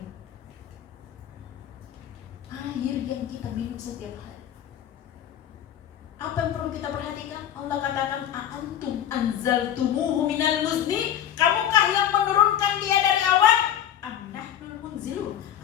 Air yang kita minum setiap hari. Apa yang perlu kita perhatikan? Allah katakan, a'antum anzaltumuhu minal muzni, kamukah yang menurunkan dia dari awan? Am nahnul munzilun,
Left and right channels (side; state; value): right; quieter; 10.4 dB